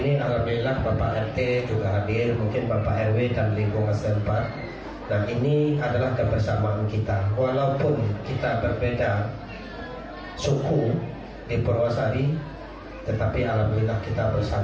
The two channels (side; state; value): both; identical; correlation 1.00